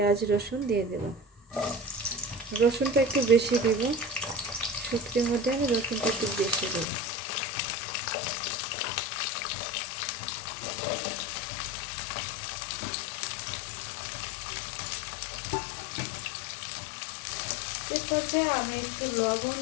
রসুন দিয়ে দেব, রসুনটা একটু বেশি দিব, শুটকির মধ্যে আমি রসুনটা একটু বেশি দেব। এরপর আমি একটু লবণ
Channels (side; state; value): right; drops out; at 6.9 s